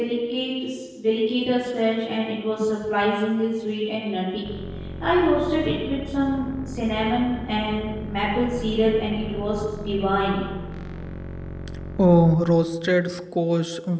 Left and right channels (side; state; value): both; identical; correlation 1.00